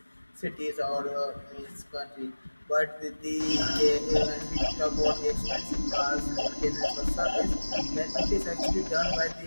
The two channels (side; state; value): both; inverted; correlation -1.00